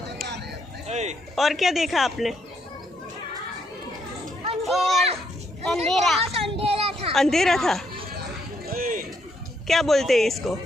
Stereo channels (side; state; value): both; normal; correlation 0.74